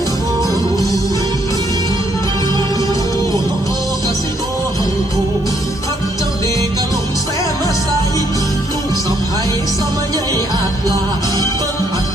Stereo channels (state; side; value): normal; both; correlation 0.70